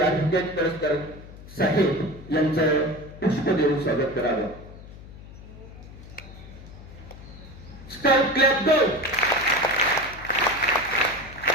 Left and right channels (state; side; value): noise; left; hum, 17 dB below the sound